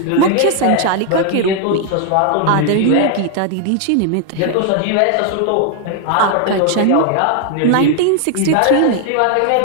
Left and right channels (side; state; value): both; different; correlation 0.00